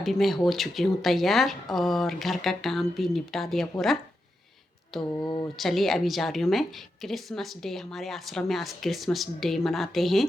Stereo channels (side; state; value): both; normal; correlation 0.87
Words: मैं हो चुकी हूं तैयार और घर का काम भी निपटा दिया पूरा। तो चलिए अभी जा रही हूँ मैं। क्रिसमस डे हमारे आश्रम में आज क्रिसमस डे मनाते हैं